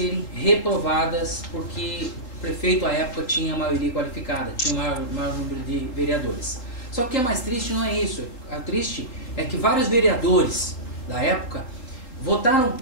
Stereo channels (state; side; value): late; right; 3.8 ms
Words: reprovadas, porque o prefeito à época tinha maioria qualificada, tinha maior número de vereadores. Só que o que é mais triste não é isso, o triste é que vários vereadores da época votaram